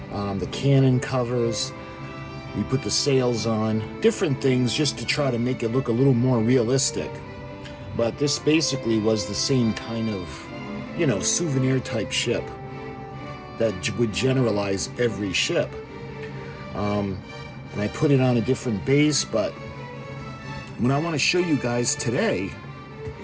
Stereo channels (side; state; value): both; identical; correlation 1.00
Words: the cannon covers. We put the sails on, different things just to try to make it look a little more realistic. But this basically was the same kind of, souvenir type ship that would generalize every ship. And I put it on a different base, but what I want to show you guys today